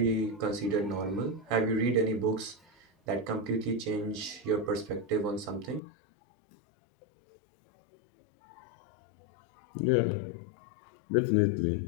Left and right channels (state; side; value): drops out; right; at 5.8 s